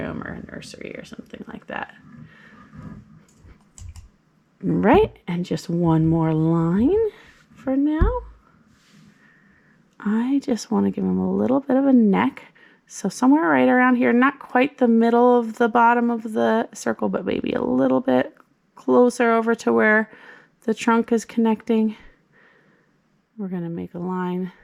or a nursery or something like that. Right, and just one more line for now. I just want to give him a little bit of a neck. So somewhere right around here, not quite the middle of the bottom of the circle, but maybe a little bit closer over to where the trunk is connecting. We're going to make a line,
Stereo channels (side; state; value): both; identical; correlation 1.00